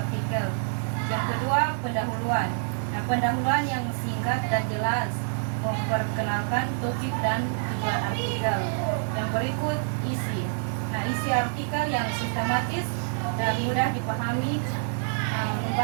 Yang kedua, pendahuluan. Nah, pendahuluan yang singkat dan jelas memperkenalkan topik dan tujuan artikel. Yang berikut, isi. Nah, isi artikel yang sistematis dan mudah dipahami,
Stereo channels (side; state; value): left; silent; digital silence